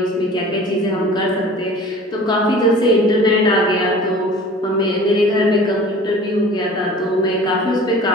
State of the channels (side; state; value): both; normal; correlation 0.44